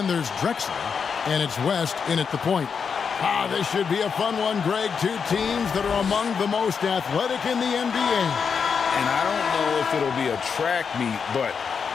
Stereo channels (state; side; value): quieter; right; 6.2 dB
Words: there's Drexler. And it's West in at the point. This should be a fun one, Greg. Two teams that are among the most athletic in the NBA. And I don't know if it'll be a track meet, but